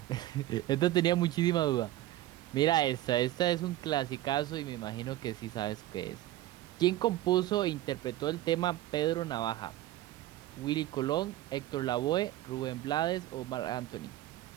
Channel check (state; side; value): quieter; left; 14.8 dB